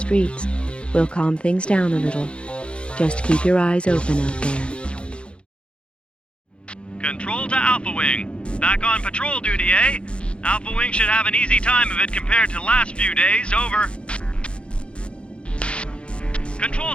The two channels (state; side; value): late; right; 0.058 ms